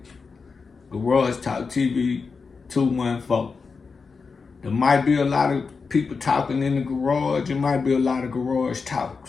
Garage Talk TV 214. There might be a lot of people talking in the garage. There might be a lot of garage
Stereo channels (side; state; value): right; quieter; 4.9 dB